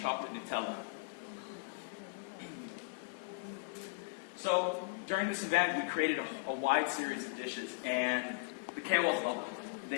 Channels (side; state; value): right; quieter; 26.0 dB